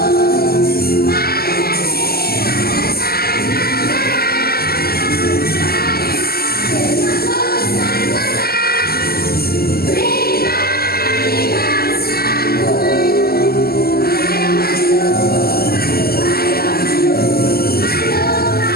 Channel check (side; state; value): right; late; 0.45 ms